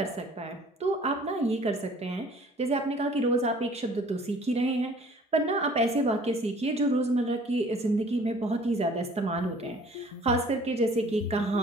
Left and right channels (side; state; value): both; normal; correlation 0.53